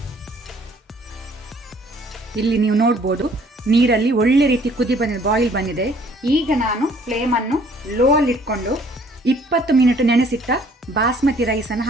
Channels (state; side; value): normal; both; correlation 0.59